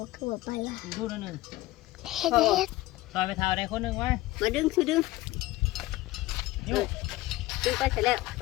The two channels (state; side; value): quieter; right; 18.0 dB